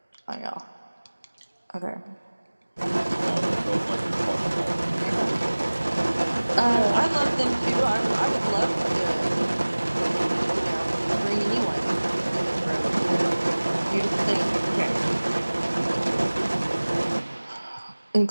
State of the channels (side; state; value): both; inverted; correlation -1.00